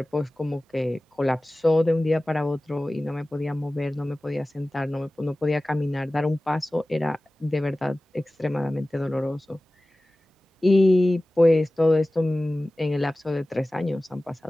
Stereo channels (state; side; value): normal; both; correlation 0.97